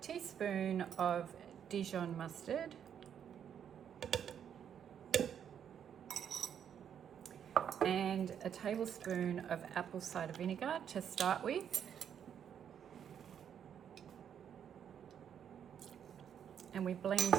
teaspoon of Dijon mustard, and a tablespoon of apple cider vinegar to start with. And we blend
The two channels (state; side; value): quieter; left; 8.6 dB